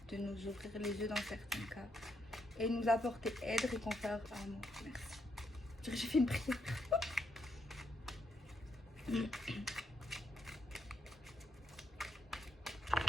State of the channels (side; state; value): both; normal; correlation 0.78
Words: de nous ouvrir les yeux dans certains cas et nous apporter aide, réconfort, amour. Merci. J'ai fait une prière.